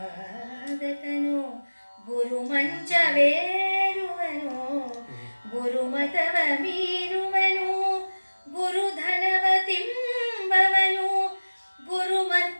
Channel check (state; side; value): inverted; both; correlation -1.00